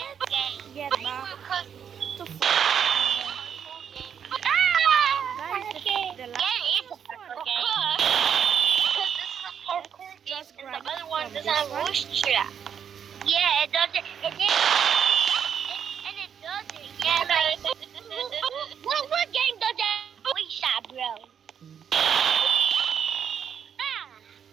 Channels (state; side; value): quieter; left; 8.0 dB